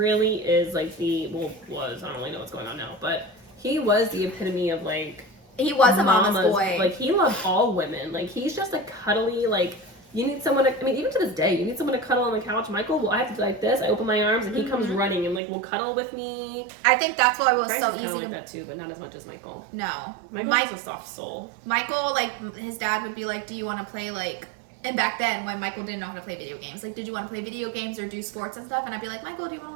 is like I don't really know what's going on now, but he was the epitome of like, he was a mama's boy. Like, he loved all women. Like, he's just a cuddly, like, you need someone to, I mean, even to this day, you need someone to cuddle on the couch. Michael, well, I have to do like this. I open my arms and he comes running and like will cuddle with me. I think that's why it was Bryce so is easy. Like that too, but not as much as Michael. No, Michael's a soft soul. Michael, like, his dad would be like, "Do you want to play like?" And back then, when Michael didn't know how to play video games, like, did you want to play video games or do sports and stuff? And I'd be like, Michael, do you want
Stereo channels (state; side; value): drops out; left; at 15.4 s